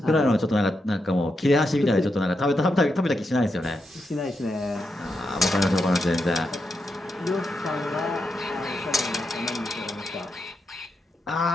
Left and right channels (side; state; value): both; normal; correlation 0.85